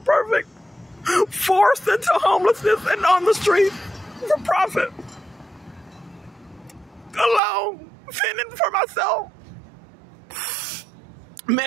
perfect, forced into homelessness and on the street for profit. Alone, fending for myself.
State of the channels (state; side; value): drops out; left; at 7.4 s